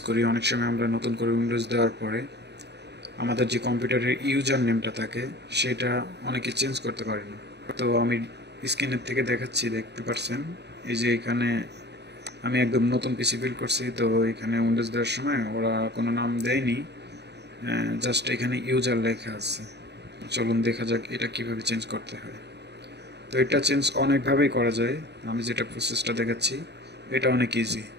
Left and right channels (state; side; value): late; left; 0.49 ms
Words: করি, অনেক সময় আমরা নতুন করে উইন্ডোজ দেওয়ার পরে আমাদের যে কম্পিউটারের ইউজার নেমটা থাকে সেটা অনেকে চেঞ্জ করতে পারে না। তো আমি স্ক্রিনের থেকে দেখাচ্ছি, দেখতে পাচ্ছেন এই যে এখানে আমি একদম নতুন পিসি বিল্ড করছি। তো এখানে উইন্ডোজ দেওয়ার সময় ওরা কোনো নাম দেয়নি, জাস্ট এখানে ইউজার লেখা আছে। চলুন দেখা যাক এটা কিভাবে চেঞ্জ করতে হয়। তো এটা চেঞ্জ অনেকভাবেই করা যায়, আমি যেটা প্রসেসটা দেখাচ্ছি এটা অনেক ইজি।